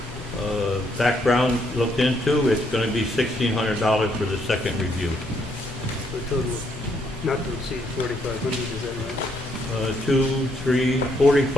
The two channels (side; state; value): both; normal; correlation 0.73